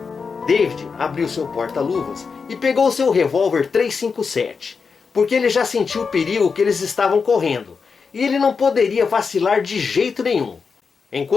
David abriu seu porta-luvas e pegou seu revólver 357, porque ele já sentiu o perigo que eles estavam correndo, e ele não poderia vacilar de jeito nenhum.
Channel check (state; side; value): quieter; right; 5.3 dB